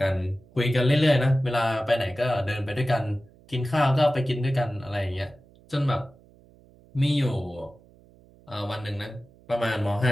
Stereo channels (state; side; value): noise; right; hum, 27 dB below the sound